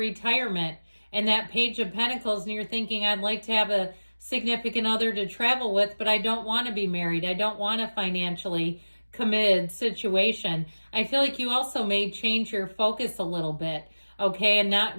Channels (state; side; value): inverted; both; correlation -1.00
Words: and that Page of Pentacles and you're thinking, I'd like to have a significant other to travel with, but I don't want to be married. I don't want a financially committed situation. I feel like you also may change your focus a little bit, okay, and not